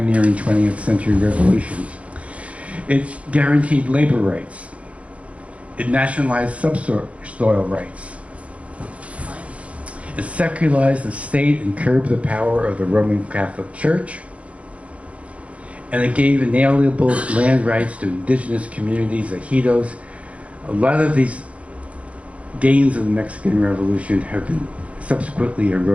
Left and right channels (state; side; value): late; left; 0.064 ms